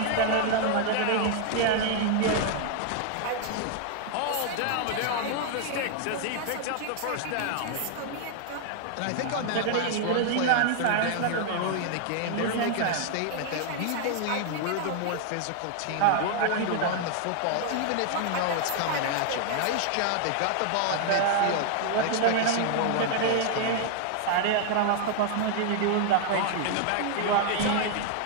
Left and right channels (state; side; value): different; both; correlation 0.00